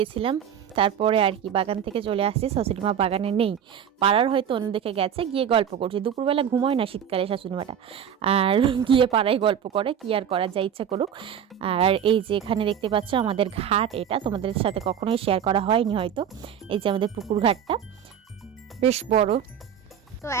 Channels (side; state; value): left; quieter; 8.7 dB